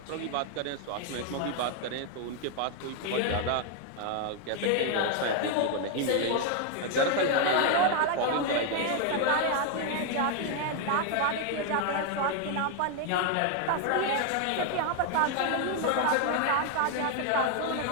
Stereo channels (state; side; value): different; both; correlation 0.01